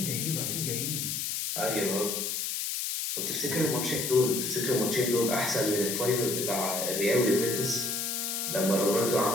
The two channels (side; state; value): left; noise; hiss, 2 dB below the sound